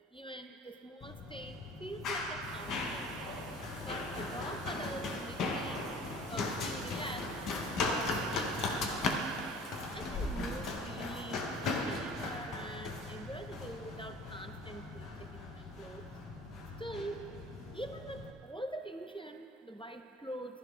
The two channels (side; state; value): both; normal; correlation 0.45